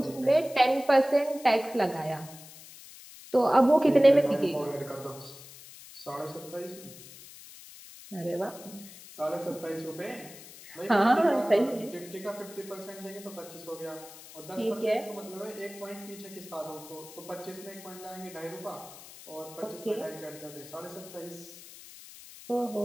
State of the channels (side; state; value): left; noise; hiss, 17 dB below the sound